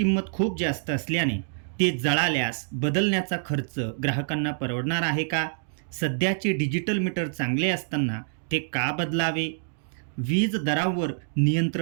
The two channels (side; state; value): left; silent; digital silence